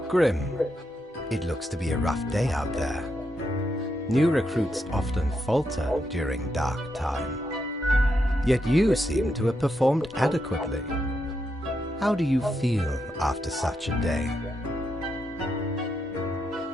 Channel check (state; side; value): normal; both; correlation 0.82